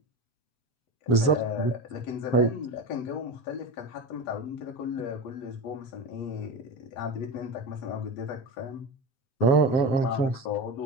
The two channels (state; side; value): late; right; 7.8 ms